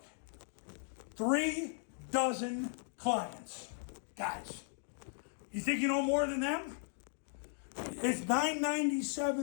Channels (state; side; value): silent; right; 53 dB below the other